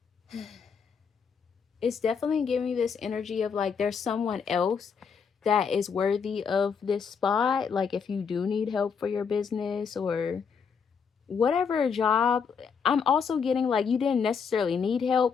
It's definitely giving me this energy of like there's someone else that is worthy of this spot. Like if you do need help for your business or whatever job, I'm also getting like you didn't necessarily need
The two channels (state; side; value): quieter; right; 6.3 dB